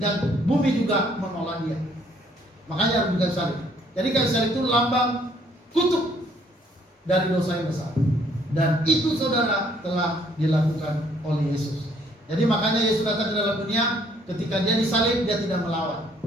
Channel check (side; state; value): both; normal; correlation 0.64